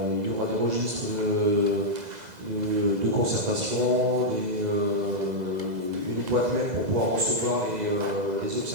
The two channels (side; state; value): left; late; 2.0 ms